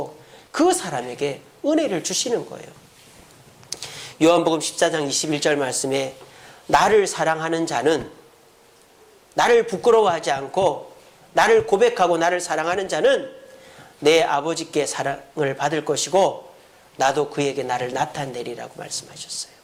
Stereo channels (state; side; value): identical; both; correlation 1.00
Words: 그 사람에게 은혜를 주시는 거예요. 요한복음 14장 21절 말씀에 나를 사랑하는 자는 나를 부끄러워하지 않고 나를 고백하고 나를 사랑하는 자는 내 아버지께 사랑을 받을 것이고 나도 그에게 나를 나타내리라고 말씀하셨어요.